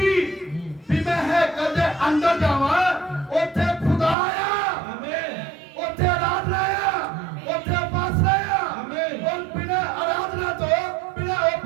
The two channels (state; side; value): drops out; left; at 4.2 s